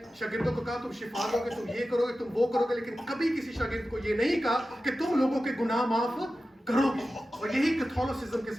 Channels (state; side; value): normal; both; correlation 0.94